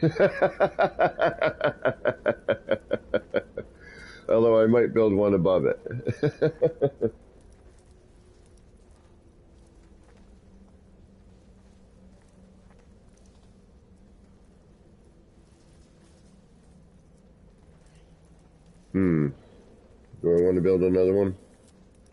Although I might build one above it. Do I want to build another one?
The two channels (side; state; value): both; identical; correlation 1.00